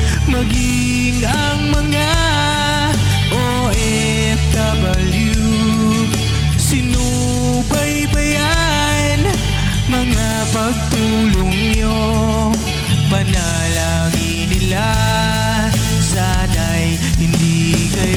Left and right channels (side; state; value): both; identical; correlation 1.00